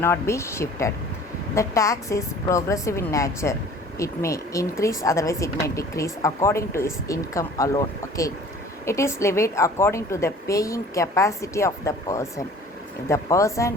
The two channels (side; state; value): both; normal; correlation 0.48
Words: be shifted. The tax is progressive in nature. It may increase, otherwise it may decrease according to his income alone. Okay. It is levied according to the paying capacity of the person. If the